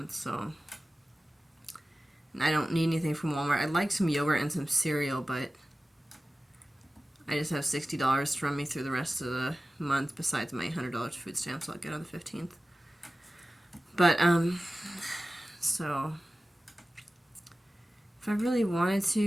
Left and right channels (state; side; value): normal; both; correlation 0.96